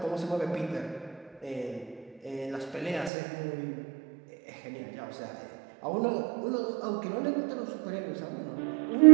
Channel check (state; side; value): drops out; left; at 3.1 s